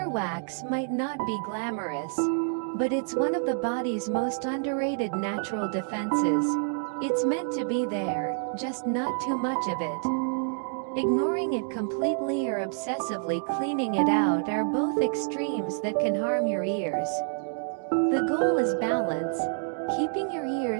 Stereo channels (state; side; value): silent; left; digital silence